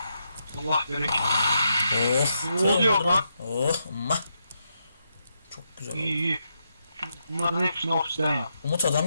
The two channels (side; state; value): both; inverted; correlation -0.82